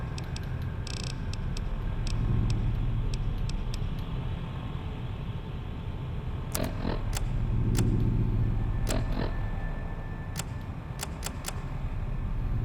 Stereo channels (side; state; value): both; identical; correlation 1.00